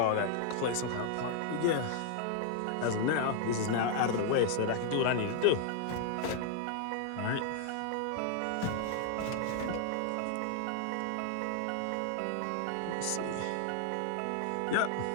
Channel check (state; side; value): different; both; correlation -0.01